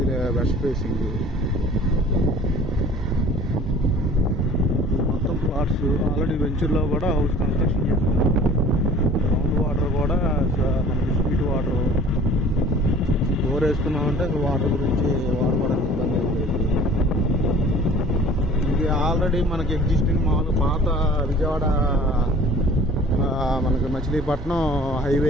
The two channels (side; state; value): both; normal; correlation 0.47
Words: వెస్ట్ ఫేసింగ్. మొత్తం ప్లాట్స్. ఆల్రెడీ వెంచర్లో కూడా హౌస్ కన్స్ట్రక్షన్ చేస్తున్నాం. గ్రౌండ్ వాటర్ కూడా మనకి స్వీట్ వాటర్ బోర్ వేసుకున్నామంటే వాటర్ గురించి వాడుకోవడానికి ఇబ్బంది అవుతుంది. ఇది ఆల్రెడీ మనకి ఎగ్జిస్టింగ్ మామూలు పాత విజయవాడ మనకి మచిలీపట్నం హైవే